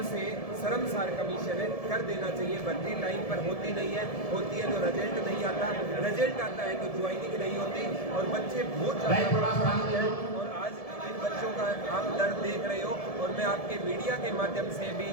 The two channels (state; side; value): late; right; 1.7 ms